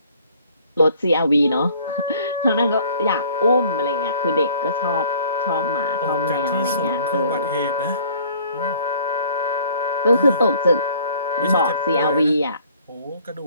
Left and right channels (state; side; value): inverted; both; correlation -0.55